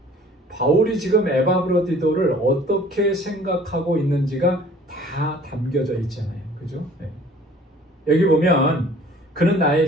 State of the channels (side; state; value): both; normal; correlation 0.52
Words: 바울이 지금 에바브로디도를 어떻게 생각하고 있는지가 다 담겨져 있잖아요. 그죠? 여기 보면 그는